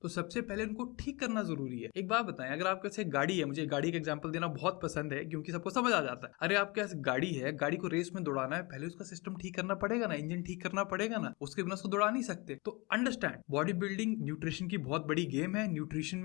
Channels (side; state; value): right; quieter; 26.2 dB